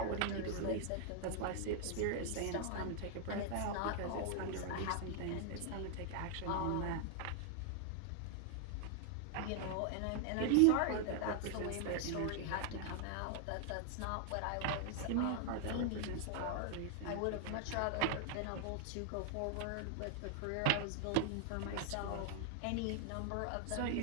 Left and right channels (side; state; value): both; different; correlation 0.00